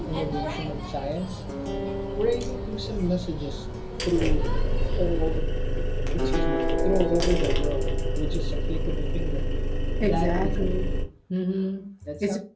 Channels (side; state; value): both; identical; correlation 1.00